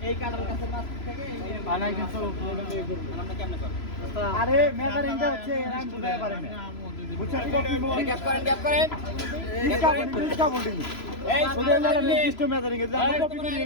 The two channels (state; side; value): late; right; 3.0 ms